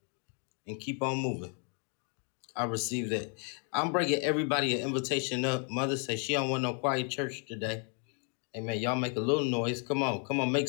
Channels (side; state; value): right; quieter; 39.6 dB